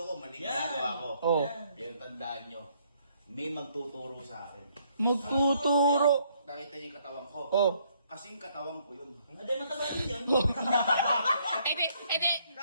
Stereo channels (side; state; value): both; inverted; correlation -0.68